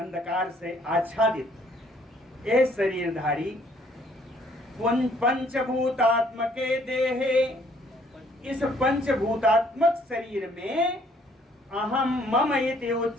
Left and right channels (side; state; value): both; normal; correlation 0.62